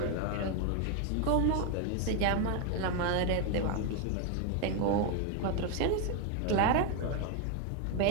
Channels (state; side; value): different; both; correlation 0.01